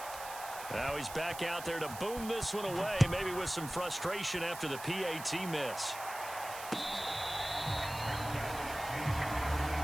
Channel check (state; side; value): noise; right; hiss, 12 dB below the sound